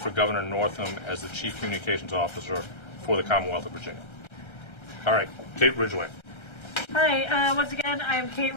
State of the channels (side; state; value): right; late; 1.3 ms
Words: Governor Northam as the Chief Communications Officer for the Commonwealth of Virginia. All right, Kate Ridgway. Hi, once again, I'm Kate